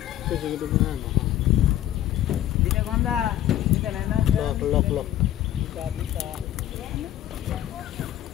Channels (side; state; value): right; quieter; 12.5 dB